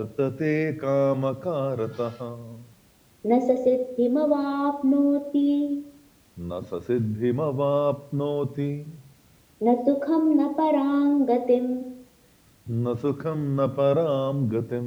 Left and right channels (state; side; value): identical; both; correlation 1.00